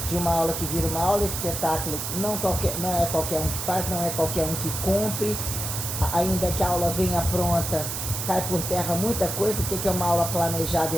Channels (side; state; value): right; noise; hiss, 4 dB below the sound